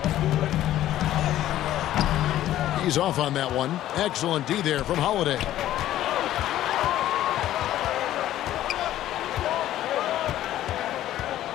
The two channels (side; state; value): right; quieter; 13.2 dB